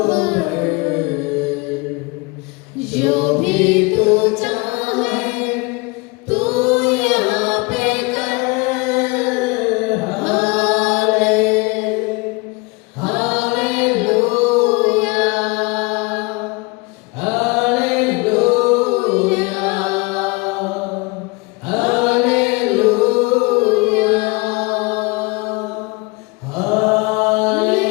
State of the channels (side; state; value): right; quieter; 26.8 dB